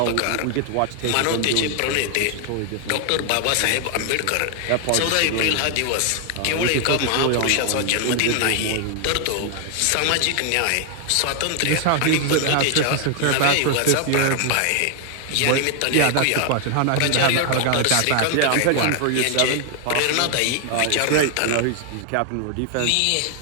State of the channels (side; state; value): both; different; correlation 0.00